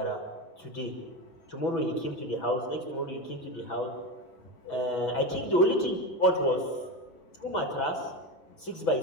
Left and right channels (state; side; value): late; right; 6.1 ms